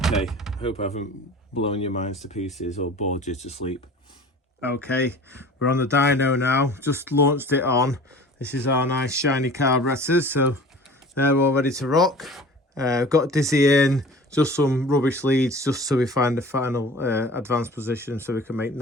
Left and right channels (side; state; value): both; normal; correlation 0.43